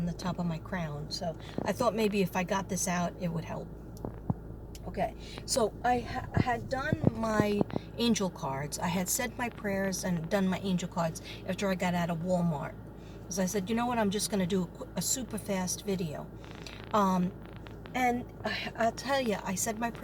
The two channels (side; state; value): both; identical; correlation 1.00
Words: the top of my crown, so I thought maybe if I got this out, it would help. Okay, so I had done my angel cards. I had said my prayers and done my angel cards after I got out of Walmart. Because I said, you know what, I'm just going to do a super fast video. And I'll tell you, I said my